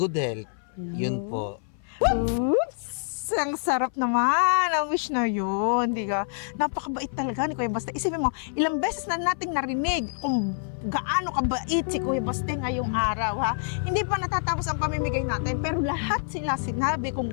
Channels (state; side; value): silent; right; 57 dB below the other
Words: health. Yun po. Oops! Ang sarap naman ang wish na yun, di ka? Napakabait talaga ni Kuya Baste. Isipin mo, ilang beses na nating narinig kung gaano kabait si Kuya Baste ngayong araw, ha? Hindi pa natatapos ang pamimigay natin, pero lahat sila sinabi kung